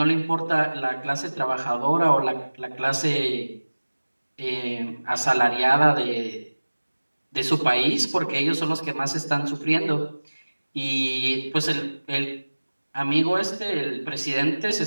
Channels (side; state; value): both; inverted; correlation -1.00